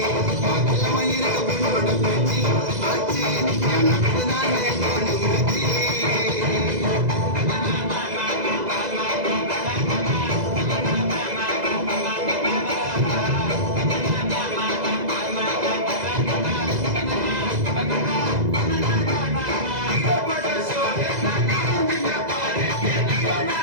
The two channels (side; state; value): left; late; 2.0 ms